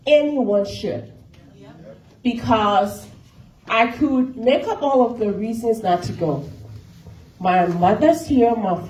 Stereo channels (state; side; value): identical; both; correlation 1.00